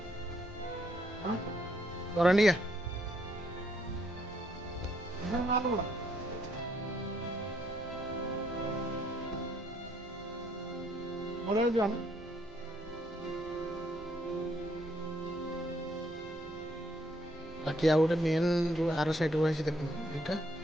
କରଣ୍ଡିଆ ବାକି ଆଉ ଗୋଟେ ମେନ୍ ଯେଉଁ ଆର ସାଇଡ଼୍ ରହିଛି ଦେଖନ୍ତୁ, ଏଇଟା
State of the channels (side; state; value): left; noise; rumble, 20 dB below the sound